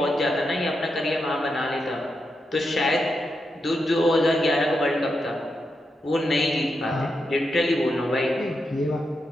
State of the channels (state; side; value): normal; both; correlation 0.85